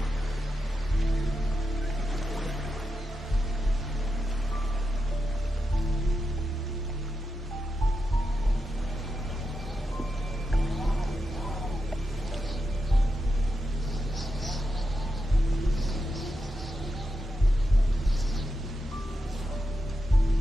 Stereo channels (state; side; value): normal; both; correlation 0.88